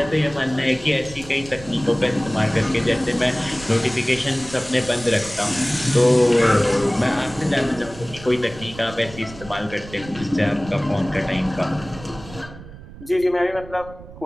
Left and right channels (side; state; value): right; noise; rumble, 16 dB below the sound